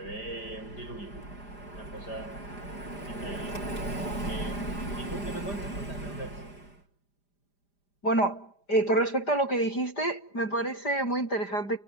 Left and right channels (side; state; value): right; late; 5.0 ms